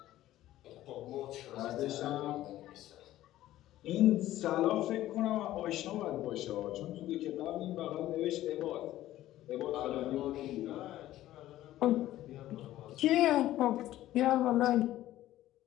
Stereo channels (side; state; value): right; quieter; 14.3 dB